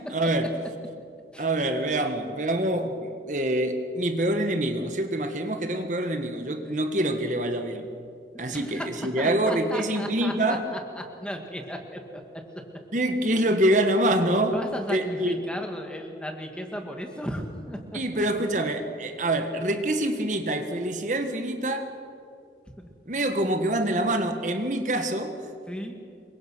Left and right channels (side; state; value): both; normal; correlation 0.45